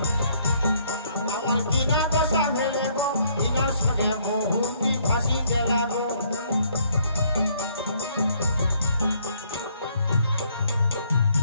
আমার কিনা দশা ভেলে গো, ইনার সঙ্গে বহুটি ফাঁসি গেলা গো।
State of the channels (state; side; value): inverted; both; correlation -0.66